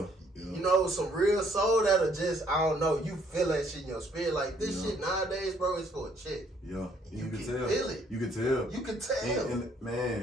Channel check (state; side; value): normal; both; correlation 0.65